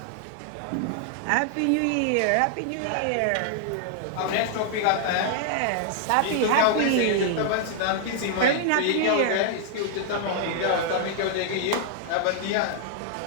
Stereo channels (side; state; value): both; different; correlation 0.00